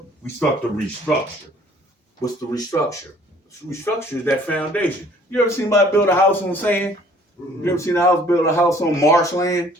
we start to restructure. What's the restructure? Restructure is that foundation. You ever seen somebody build a house on sand? You ever seen build a house on marshland?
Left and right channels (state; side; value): normal; both; correlation 0.56